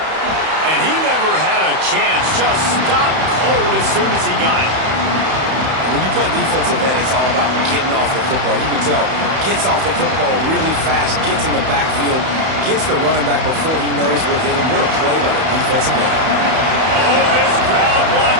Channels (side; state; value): left; late; 31 ms